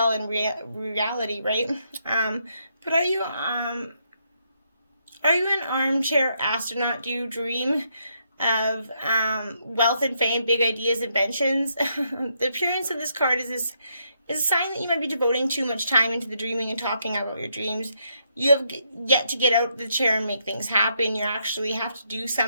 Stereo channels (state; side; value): inverted; both; correlation -0.76